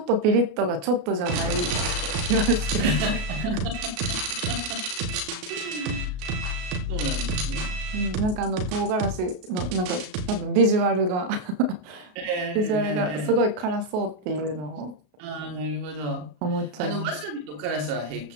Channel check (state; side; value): late; left; 33 ms